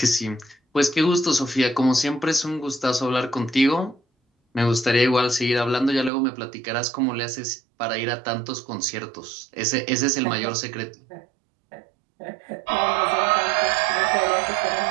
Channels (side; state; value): left; drops out; at 6.1 s